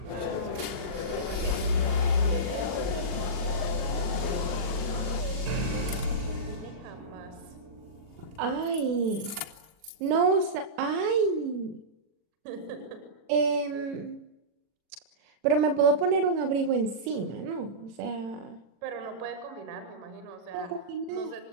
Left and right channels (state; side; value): late; left; 40 ms